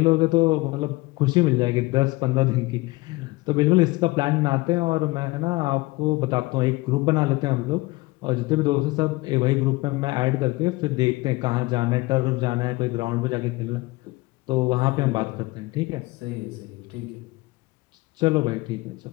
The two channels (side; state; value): right; quieter; 21.8 dB